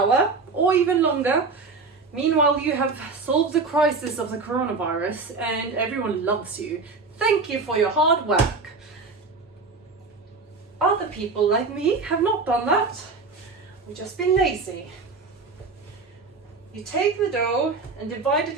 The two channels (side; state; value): left; quieter; 4.2 dB